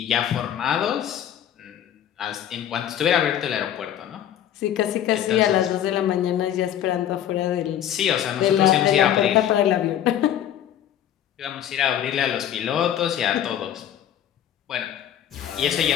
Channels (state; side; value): quieter; right; 10.6 dB